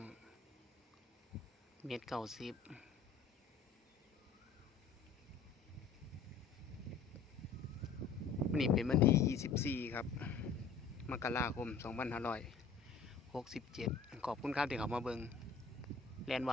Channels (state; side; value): quieter; right; 5.3 dB